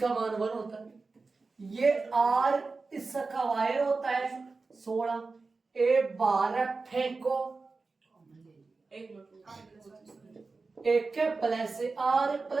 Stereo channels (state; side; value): quieter; left; 4.0 dB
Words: मान 1 होता है। ये R इसका वायर होता है 16। A12 फेंको, एक प्लस R